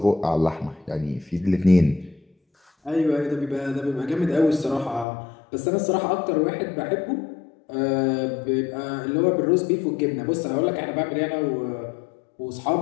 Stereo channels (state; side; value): drops out; right; at 5.1 s